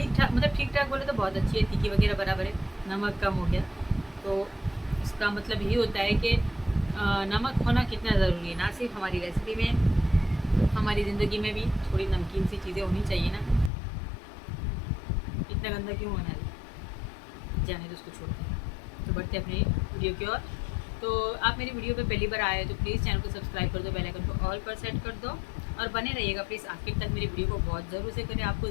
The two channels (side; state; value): right; drops out; at 13.7 s